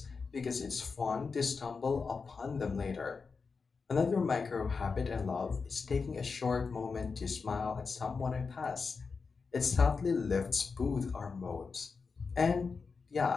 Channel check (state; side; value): quieter; right; 4.9 dB